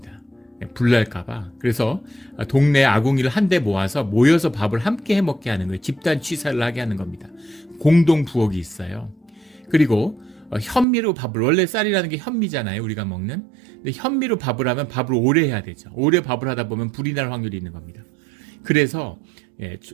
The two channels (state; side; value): drops out; left; at 10.9 s